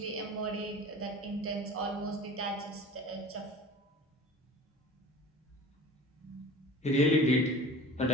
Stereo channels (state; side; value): normal; both; correlation 0.41